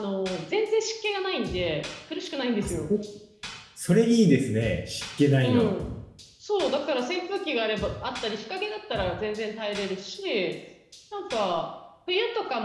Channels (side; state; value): both; identical; correlation 1.00